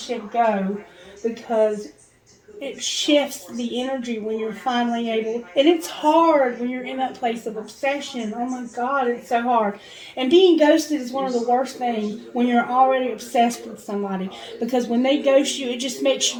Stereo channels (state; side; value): identical; both; correlation 1.00